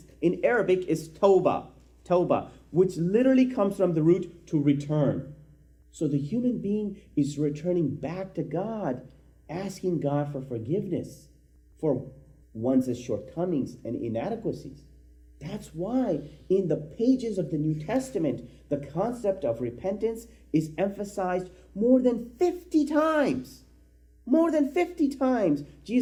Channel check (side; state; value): both; identical; correlation 1.00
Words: in Arabic is tawbah, which literally comes from the root to return. So the human being is returning back to God, asking God for forgiveness for one's shortcomings and inadequacies. That's why in the pages of the New Testament, the concept of repentance is emphasized more than 50 times. More than 50 times,